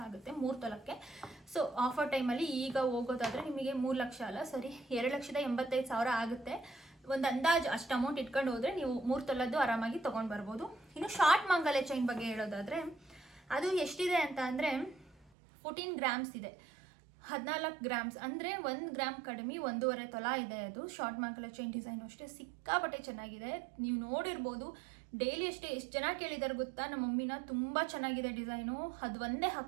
ಆಗುತ್ತೆ 3 ತೊಲಕ್ಕೆ. ಸೊ ಆಫರ್ ಟೈಮಲ್ಲಿ ಈಗ ಹೋಗೋದಾದರೆ ನಿಮಗೆ 3 ಲಕ್ಷ ಅಲ್ಲ, ಸರಿ 2,85,000 ಆಗುತ್ತೆ. ಒಂದು ಅಂದಾಜು ಅಷ್ಟು ಅಮೌಂಟ್ ಇಟ್ಕೊಂಡು ಹೋದರೆ ನೀವು 3 ತೊಲದ್ದು ಆರಾಮಾಗಿ ತೊಗೊಂಡು ಬರ್ಬೋದು. ಇನ್ನು ಶಾರ್ಟ್ ಮಾಂಗಲ್ಯ ಚೈನ್ ಬಗ್ಗೆ ಹೇಳೋದಾದರೆ ಅದು ಎಷ್ಟಿದೆ ಅಂತ ಅಂದರೆ 14 ಗ್ರಾಮ್ಸ್ ಇದೆ, 14 ಗ್ರಾಮ್ಸ್ ಅಂದರೆ 1 ಗ್ರಾಮ್ ಕಡಿಮೆ 1.5 ತೊಲ ಇದೆ. ಅದು ಶಾರ್ಟ್ ಮಾಂಗಲ್ಯ ಚೈನ್ ಡಿಸೈನು ಅಷ್ಟೇ ಸಿಕ್ಕಾಪಟ್ಟೆ ಚೆನ್ನಾಗಿದೆ. ನೀವು ನೋಡಿರ್ಬೋದು, ಡೈಲಿ ಅಷ್ಟೇ ಎಷ್ಟು ಜನ ಕೇಳಿದ್ದಾರೆ ಗೊತ್ತಾ ನಮ್ಮ ಮಮ್ಮಿನ, ತುಂಬ ಚೆನ್ನಾಗಿದೆ ಡಿಸೈನು, ಅದು ಒಂದೇ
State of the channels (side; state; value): left; drops out; at 15.3 s